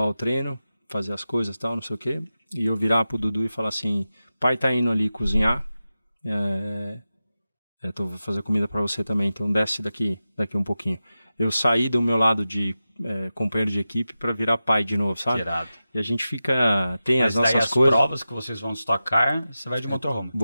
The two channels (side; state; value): both; inverted; correlation -0.93